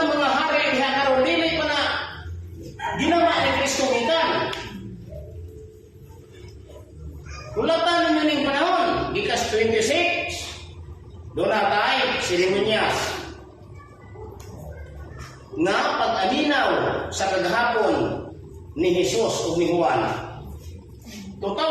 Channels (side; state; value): both; identical; correlation 1.00